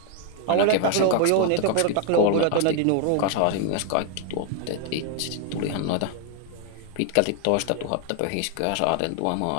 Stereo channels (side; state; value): both; different; correlation 0.00